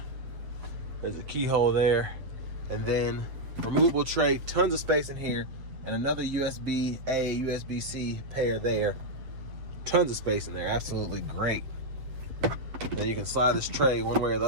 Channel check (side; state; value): left; late; 7.8 ms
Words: There's a keyhole there. And then removable tray, tons of space in here, and another USB-A, USB-C pair there. Tons of space in there, absolutely great. Then you can slide this tray one way or the